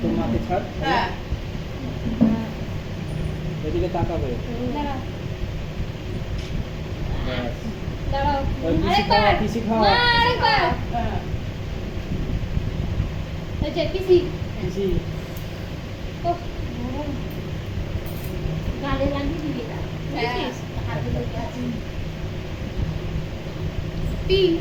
তোর মাকে ছাড় হ্যাঁ এদিকে তাকাবে দাঁড়াও ব্যাস। দাঁড়াও ওই পিসি খাওয়া পিসি খাওয়া মা আরেকবার হ্যাঁ এই যে পিসি পিসি ও গালে লাগিয়ে দিবি না হ্যাঁ। হাতে লেগে আছে পি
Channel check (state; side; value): identical; both; correlation 1.00